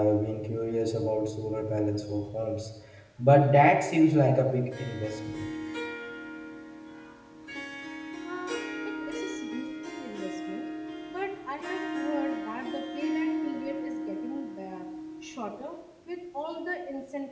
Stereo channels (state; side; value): identical; both; correlation 1.00